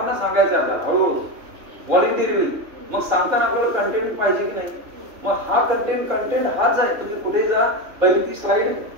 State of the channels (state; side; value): late; left; 3.4 ms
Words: सांगायचं आहे आपल्याला हळूहळू व्हॉलंटिअरली. मग सांगताना आपल्याला कंटेंट पाहिजे की नाही. मग हा कंटेंट हाच आहे. तुम्ही कुठे जा पहिली ती स्लाइड